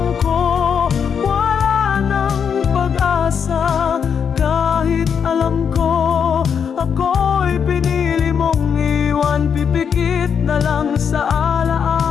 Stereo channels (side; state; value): right; quieter; 7.1 dB